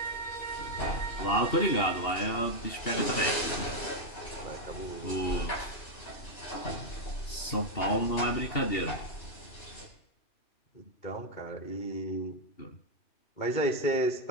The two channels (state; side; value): late; right; 2.8 ms